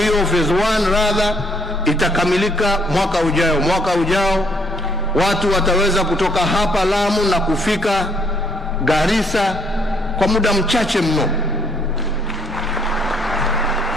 phase 1 rather, itakamilika mwaka ujao. Mwaka ujao watu wataweza kutoka hapa Lamu na kufika Garissa kwa muda mchache mno.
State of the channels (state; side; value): normal; both; correlation 0.66